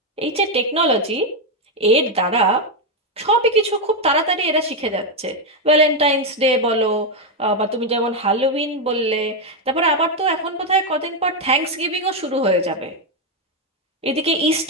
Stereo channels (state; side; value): normal; both; correlation 0.04